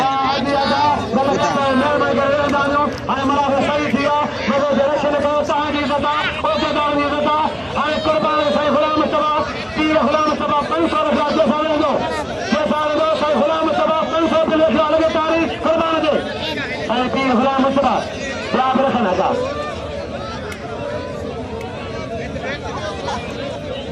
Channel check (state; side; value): identical; both; correlation 1.00